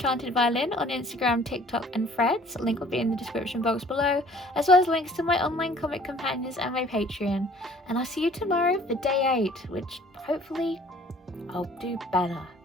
Violin on Instagram, TikTok and Threads. Link will be in the description box below, as well as links to my online comic companions and my Patreon. And I'll see you tomorrow for day 8, which hopefully I'll do better.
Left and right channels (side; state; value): both; normal; correlation 0.54